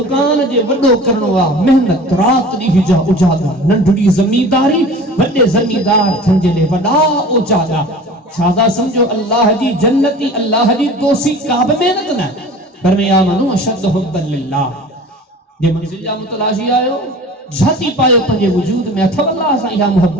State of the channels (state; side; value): normal; both; correlation 0.41